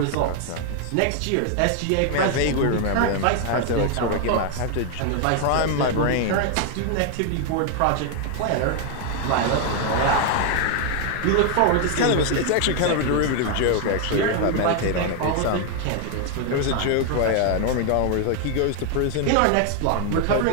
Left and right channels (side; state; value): both; different; correlation 0.00